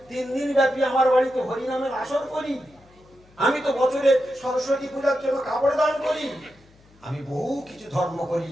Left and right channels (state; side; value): noise; left; hum, 29 dB below the sound